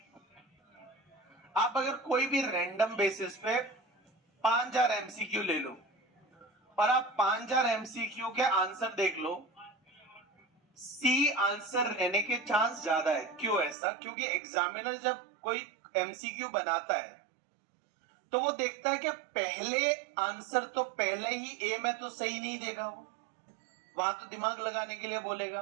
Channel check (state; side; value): drops out; left; at 13.8 s